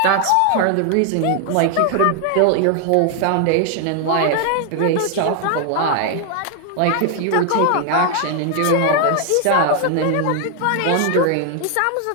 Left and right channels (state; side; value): different; both; correlation 0.00